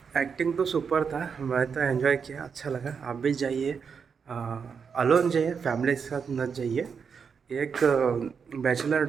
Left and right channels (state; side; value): quieter; left; 6.2 dB